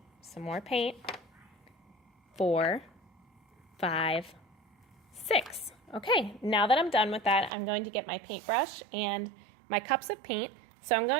some more paint, 4, 5, 6. Okay, now that I'm done with that, I'm going to get my paintbrush and my cups of paint. So I'm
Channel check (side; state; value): left; drops out; at 7.5 s